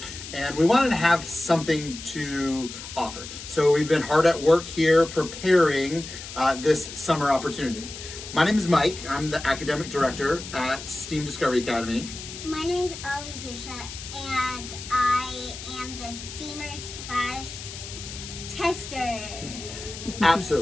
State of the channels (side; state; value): left; noise; hiss, 11 dB below the sound